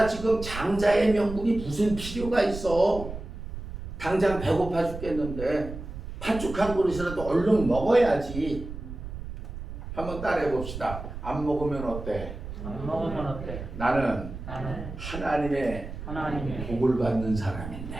지금 장자의 명분이 무슨 필요가 있어. 당장 배고파 죽겠는데 팥죽 한 그릇이라도 얼른 먹어야지. 한번 따라해 봅시다. 안 먹으면 어때? 안 먹으면 어때? 나는 하나님의 복을 받는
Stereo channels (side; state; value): right; noise; rumble, 9 dB below the sound